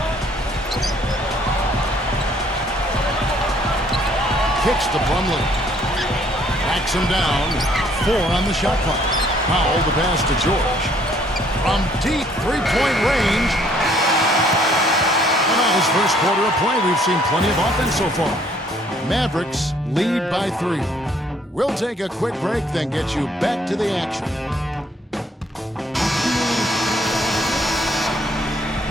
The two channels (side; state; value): both; normal; correlation 0.63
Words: Kicks to Plumlee. Backs him down. 4 on the shot clock. Powell the pass to George. From deep three-point range. And on his first quarter of play, we've seen plenty of offense so far. Mavericks lead by 3. We'll take a quick break, then get you back to the action.